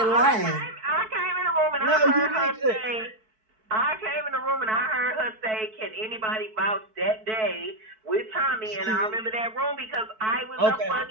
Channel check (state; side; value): late; left; 4.6 ms